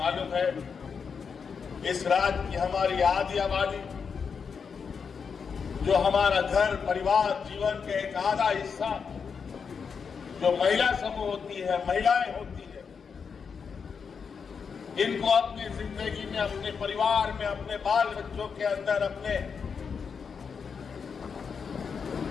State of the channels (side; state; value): right; quieter; 6.0 dB